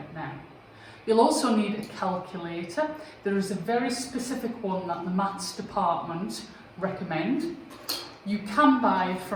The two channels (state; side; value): identical; both; correlation 1.00